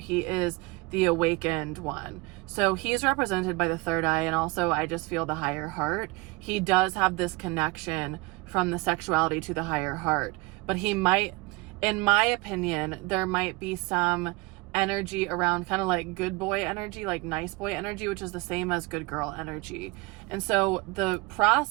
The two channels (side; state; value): left; quieter; 25.0 dB